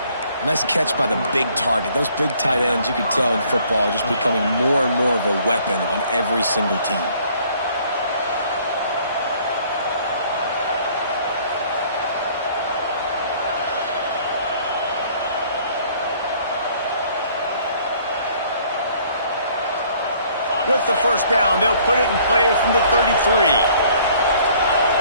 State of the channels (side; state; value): both; inverted; correlation -0.58